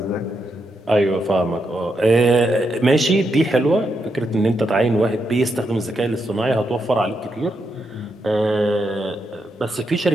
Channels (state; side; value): normal; both; correlation 0.82